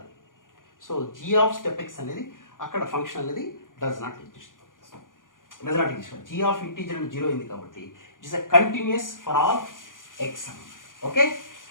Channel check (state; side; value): late; right; 0.89 ms